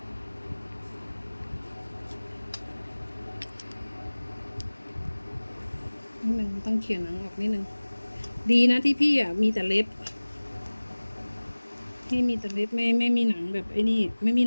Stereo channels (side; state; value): both; inverted; correlation -1.00